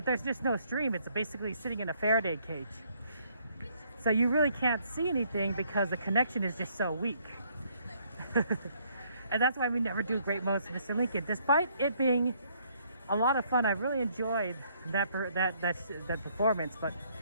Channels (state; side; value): inverted; both; correlation -0.67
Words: just no stream. It's basically sitting in a Faraday cage. So you really can't see anything because the connection is just so weak. And that's why we never do Great Moments with Mr. Lincoln. Despite it being a lot of fun, I really enjoyed that performance. But